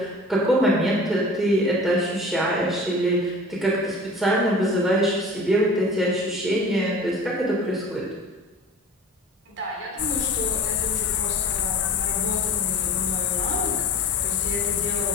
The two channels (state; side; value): normal; both; correlation 0.40